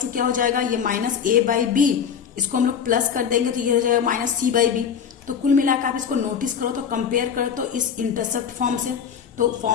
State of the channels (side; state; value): right; quieter; 7.5 dB